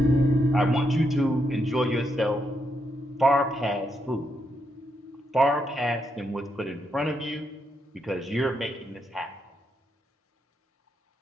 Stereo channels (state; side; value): normal; both; correlation 0.80